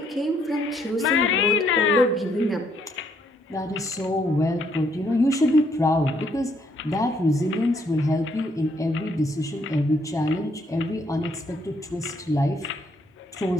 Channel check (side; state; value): both; normal; correlation 0.70